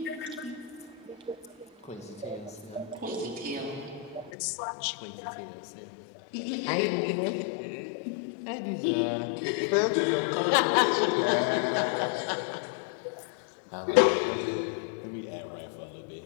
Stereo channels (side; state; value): right; drops out; at 4.3 s